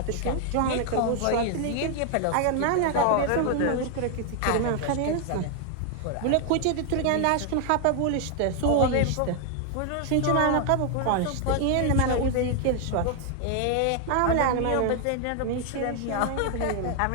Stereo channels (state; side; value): different; both; correlation 0.00